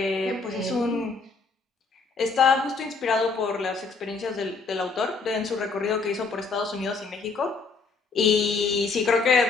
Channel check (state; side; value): quieter; right; 4.3 dB